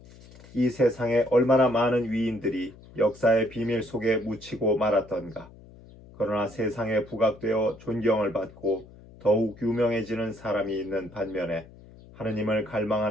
이 세상에 얼마나 많은 위인들이 역사의 비밀 속에 묻히고 말았던가. 그러나 세상에 부각되어 존경을 받고 더욱 유명해지는 사람이 있는 반면에 하느님을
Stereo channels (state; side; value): noise; left; hum, 21 dB below the sound